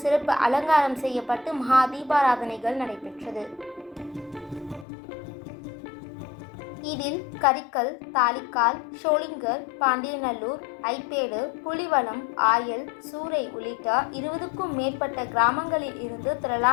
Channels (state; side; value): drops out; right; at 4.9 s